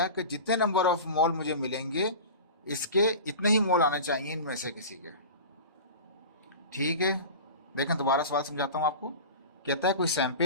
कि जितने नंबर ऑफ मोल मुझे मिलेंगे इसके इतने ही मोल आने चाहिए इनमें से किसी के। ठीक है, देखें दोबारा सवाल समझाता हूँ आपको। कहता है कोई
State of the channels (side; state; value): both; inverted; correlation -0.34